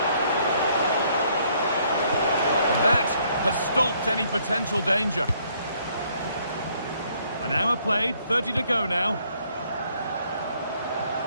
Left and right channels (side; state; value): both; inverted; correlation -0.67